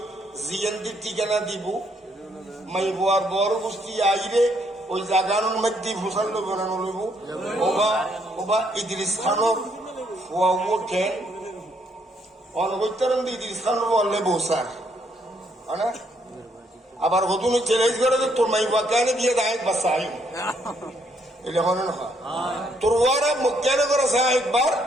জিএনদির ঠিকানা দিব মাই বোয়ার বড় গোষ্ঠী আইরে ওই জাগানোর মধ্যে ফসল বানানো লইব ওবা ইদ্রিস খানোর ফুয়াবো কেন অনবৈতরণ ইদ্রিস খানোর বললে বৌসার না আবার হতুন চ্যালেঞ্জ করে তোর মাই বা কেন দিয়ে দায় বা সাহিব এটা হনে না তোর ওয়ারা মুখ কেন করে সাহেববার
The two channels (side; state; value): both; normal; correlation 0.71